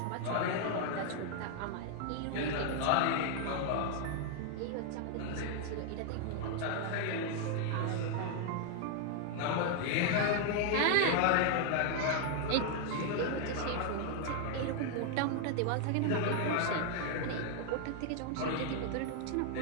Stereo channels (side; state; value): both; different; correlation 0.00